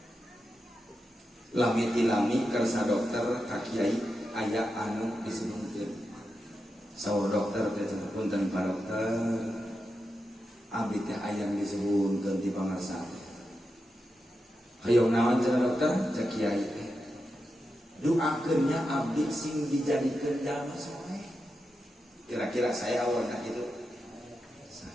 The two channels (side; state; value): both; normal; correlation 0.88